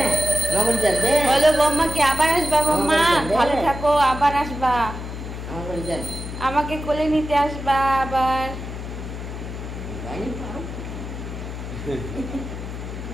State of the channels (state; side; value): noise; left; hum, 8 dB below the sound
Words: বলো বম্মাকে আবার আসবা বম্মা, ভালো থাকো, আবার আসবা, আমাকে কোলে নিতে আসবা আবার।